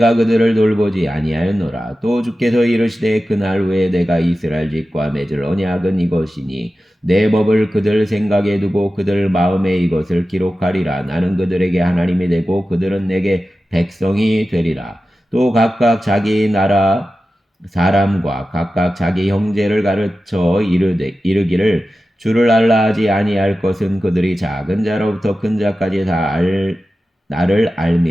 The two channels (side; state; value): both; normal; correlation 0.94